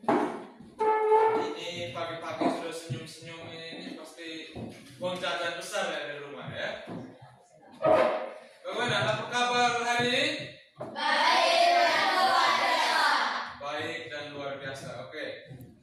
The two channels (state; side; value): identical; both; correlation 1.00